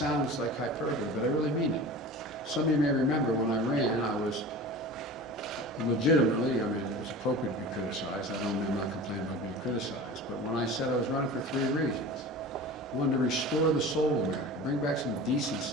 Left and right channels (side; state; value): both; normal; correlation 0.36